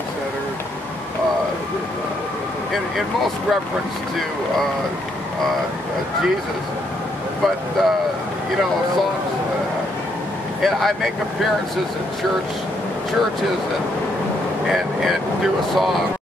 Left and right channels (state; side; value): normal; both; correlation 0.74